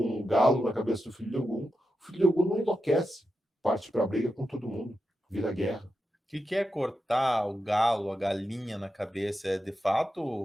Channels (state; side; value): normal; both; correlation 0.88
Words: um galo na cabeça do filho de Ogum. O filho de Ogum não enlouquece, parte para a briga com todo mundo, vira guerra. O que é cortar o galo, a galinha na cabeça? É de